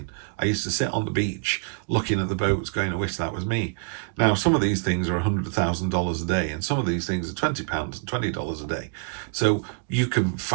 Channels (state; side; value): quieter; left; 39.6 dB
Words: I used to sit on the beach looking at the boats going, I wish that was me. Now, some of these things are $100,000 a day, and some of these things are £20 and $20 a day. So you can